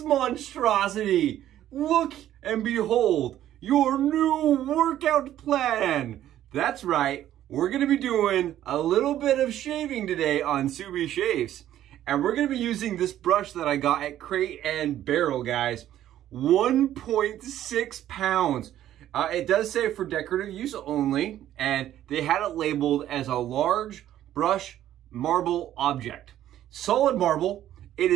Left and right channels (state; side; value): quieter; left; 12.2 dB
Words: monstrosity. Look and behold, your new workout plan. That's right, we're gonna be doing a little bit of shaving today on Subi Shaves. And we're gonna be using this brush that I got at Crate and Barrel, guys. 1.6 pounds. It does say for decorative use only, and they had it labeled as a large brush marble object. Solid marble, it